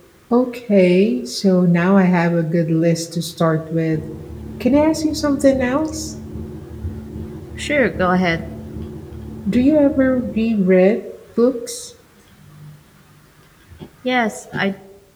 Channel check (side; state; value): both; identical; correlation 1.00